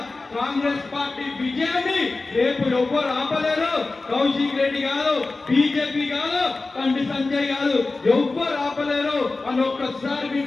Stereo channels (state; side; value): quieter; right; 3.5 dB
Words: కాంగ్రెస్ పార్టీ విజయాన్ని రేపు ఎవ్వరు ఆపలేరు. కౌశిక్ రెడ్డి కాదు, బీజేపీ కాదు, కంటి సంజయ్ కాదు, ఎవ్వరు ఆపలేరు అని ఒక్కసారి